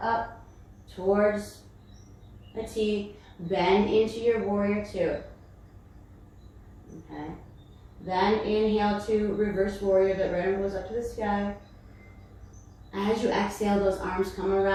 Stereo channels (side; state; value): both; identical; correlation 1.00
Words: up towards a T. Bend into your warrior two. Okay. Then inhale to reverse warrior. That right arm goes up to the sky. As you exhale, those arms come